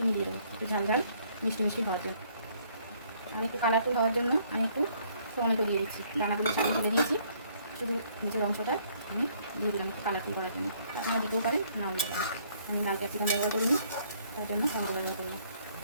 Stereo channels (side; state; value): both; inverted; correlation -0.64